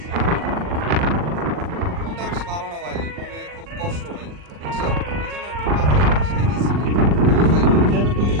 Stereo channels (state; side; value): late; left; 40 ms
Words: মনটা বেশি ভালো না ভাই, মনে খুব কষ্ট ভাই, বুঝছেন? এই জন্য একটু বাতাস খাইতেছি কেন ভাই? কেন, কি